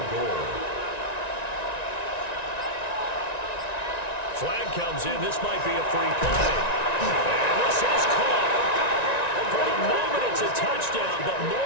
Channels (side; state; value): right; late; 1.9 ms